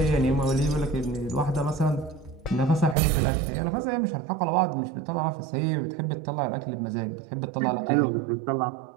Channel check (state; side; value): drops out; left; at 3.0 s